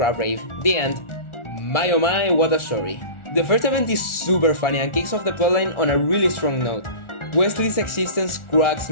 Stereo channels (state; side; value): late; right; 1.4 ms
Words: rave. The end. My oh my, what a story. The first event is super funny and kicks off the plotline on a really strong note. Wesley's existence cracks